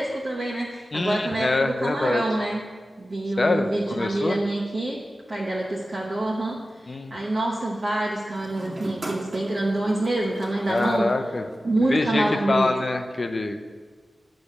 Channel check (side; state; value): both; normal; correlation 0.94